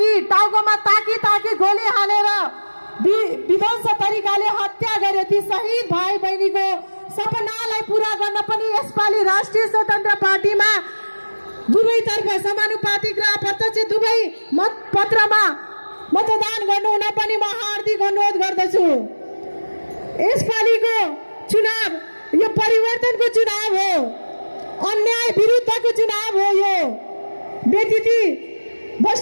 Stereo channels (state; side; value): inverted; both; correlation -1.00